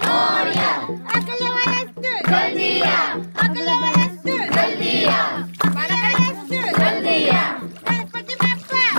मोरया अगले वस्तु जल्दिया अगले वस्तु जल्दिया वस्तु जल्दिया गणपति बाप्पा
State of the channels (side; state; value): both; inverted; correlation -1.00